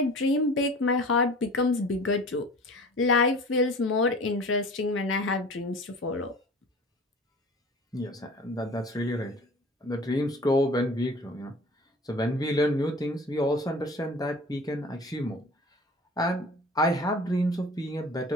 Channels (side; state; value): both; normal; correlation 0.42